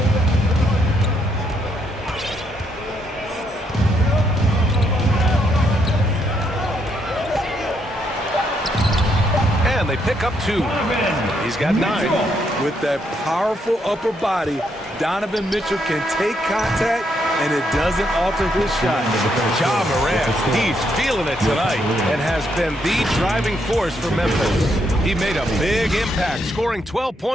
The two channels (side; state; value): both; normal; correlation 0.75